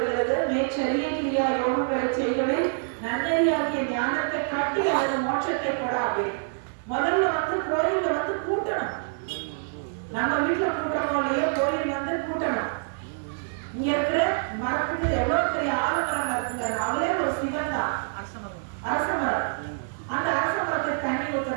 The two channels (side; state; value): left; silent; 55 dB below the other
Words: மேற்சரிய கிரியா யோகங்களை செய்வதை நன்னறியாகிய ஞானத்தை காட்டி அது மோட்சத்தை கொடாது. முதல்ல கோயில்ல கூட்டணும். நம்ம வீட்டுல கூட்டணும் இல்லையோ, கோயில் கூட்டணும். இங்க இருக்கிற மரத்துக்கு எவ்வளவு பெரிய ஆலமரம் இருக்குங்க, அவரே ஒரு சிவன் தான், அரச மரம். அந்த அரச மரத்துக்கு தண்ணி